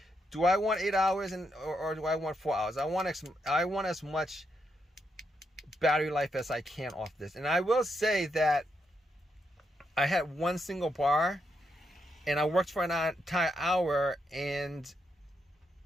do I want 8 hours or do I want 4 hours? I want as much battery life as I can off this. And I will say that I had one single bar and I worked for an entire hour and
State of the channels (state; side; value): normal; both; correlation 0.80